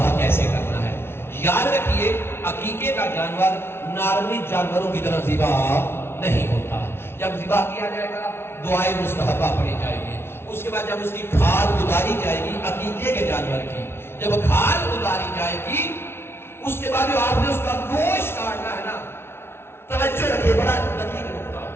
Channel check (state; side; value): late; right; 0.12 ms